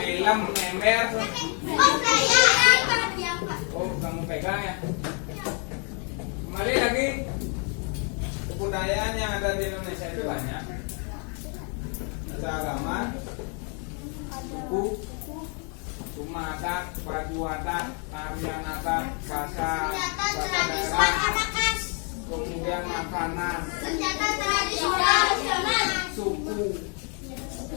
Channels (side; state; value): right; quieter; 38.6 dB